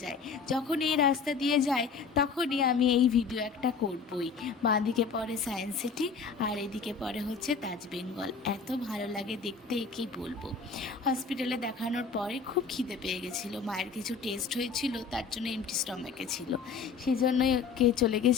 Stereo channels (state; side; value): quieter; right; 5.4 dB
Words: যায়। যখন এই রাস্তা দিয়ে যায় তখনই আমি এই ভিডিও একটা করবই। বাঁদিকে পড়ে সায়েন্স সিটি আর এদিকে পড়ে হচ্ছে তাজ বেঙ্গল। এত ভালো লাগে দেখতে, কি বলবো। হসপিটালে দেখানোর পরে খুব খিদে পেয়ে গেছিলো, মায়ের কিছু টেস্ট হয়েছিল, তার জন্য এমটি স্টমাকে ছিল। সেই জন্যই চলে